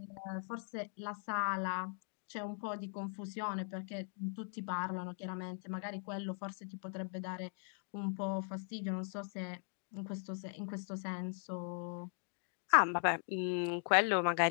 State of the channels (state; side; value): silent; right; 51 dB below the other